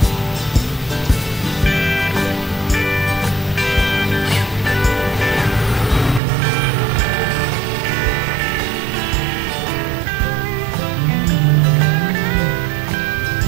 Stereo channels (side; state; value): left; drops out; at 6.2 s